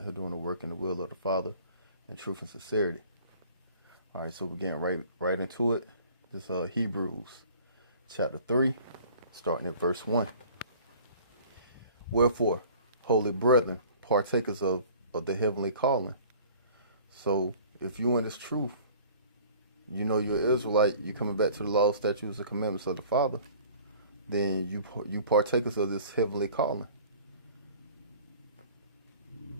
here doing the work in the will of the Father in truth and sincerity. Alright, so we're getting right into it. This Hebrews chapter 3, starting at verse 1. Wherefore, holy brethren, partakers of the heavenly calling. So if you in this truth, you know you're an Israelite, you coming back to the law, statutes, and commandments of the Father, then you partakers of this heavenly calling.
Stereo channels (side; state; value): both; inverted; correlation -0.49